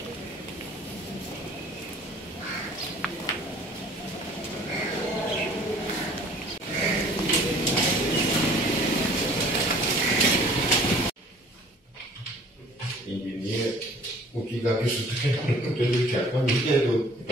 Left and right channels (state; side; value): normal; both; correlation 0.52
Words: O que dá isso tudo que é quando é do